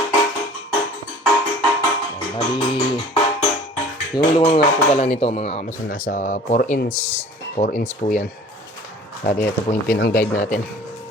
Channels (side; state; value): both; normal; correlation 0.47